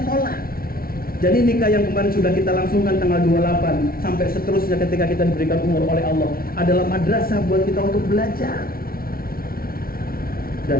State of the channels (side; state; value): right; late; 0.43 ms